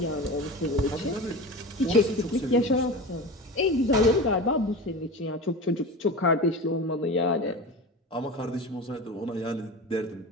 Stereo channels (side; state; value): both; normal; correlation 0.29